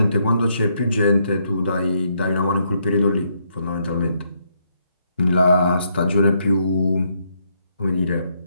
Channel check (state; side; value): inverted; both; correlation -0.75